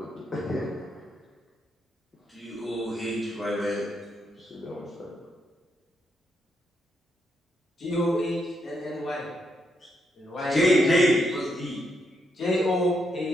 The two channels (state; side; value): normal; both; correlation 0.79